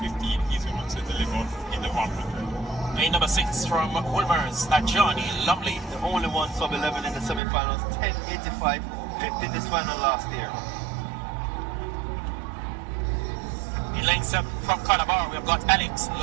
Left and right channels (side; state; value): left; drops out; at 7.4 s